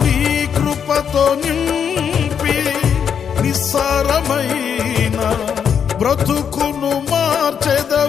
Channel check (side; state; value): right; quieter; 7.6 dB